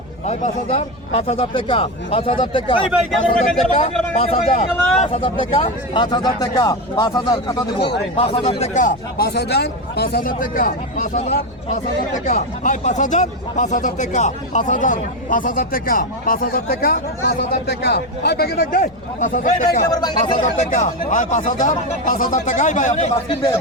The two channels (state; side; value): noise; left; rumble, 23 dB below the sound